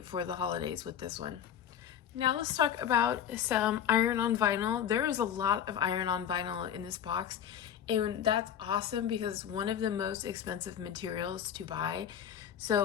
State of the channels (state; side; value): quieter; right; 9.3 dB